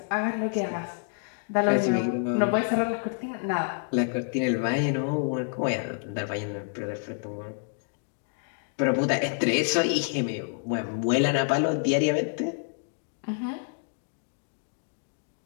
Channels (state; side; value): silent; right; 58 dB below the other